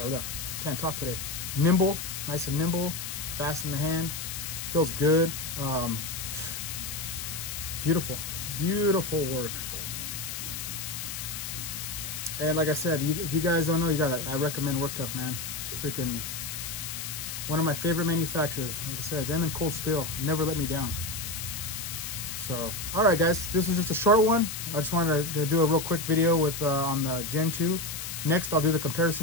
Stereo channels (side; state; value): left; noise; hiss, 6 dB below the sound